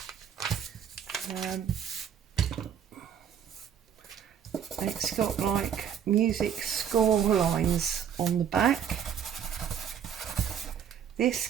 It's got like music score lines on the back. This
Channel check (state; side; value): quieter; left; 8.5 dB